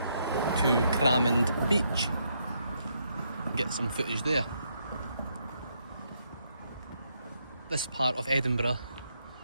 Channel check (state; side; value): inverted; both; correlation -0.76